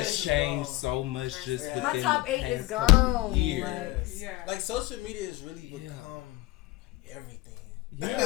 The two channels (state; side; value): quieter; right; 19.2 dB